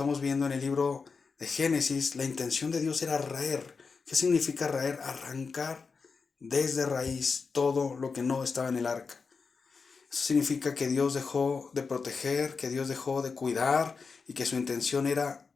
viendo en el libro de Génesis, la intención de Dios era raer. ¿Qué significa raer? Arrancar desde raíz todo lo que no estaba en el arca. Eso significa que Dios dejó de proteger, que Dios dejó de cuidar y que su intención era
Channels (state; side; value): quieter; right; 4.9 dB